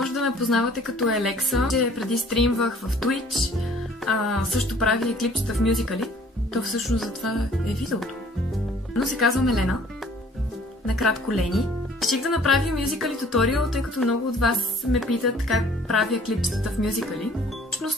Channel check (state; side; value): normal; both; correlation 0.55